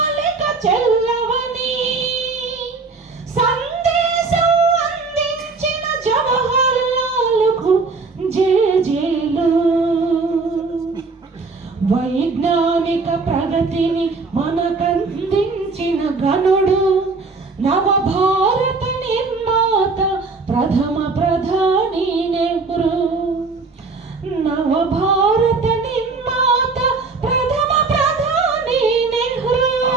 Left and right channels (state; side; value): quieter; left; 4.1 dB